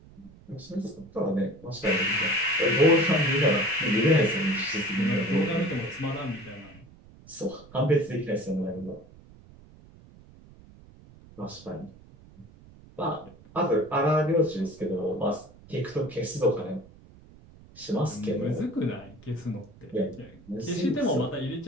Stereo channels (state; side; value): noise; right; rumble, 23 dB below the sound